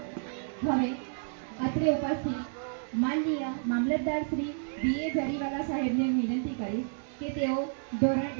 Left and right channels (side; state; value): left; silent; digital silence